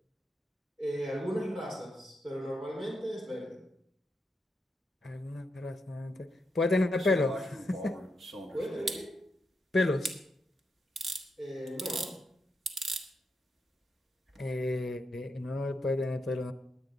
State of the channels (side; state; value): both; normal; correlation 0.83